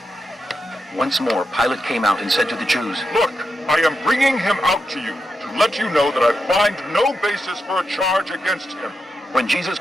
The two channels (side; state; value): both; normal; correlation 0.86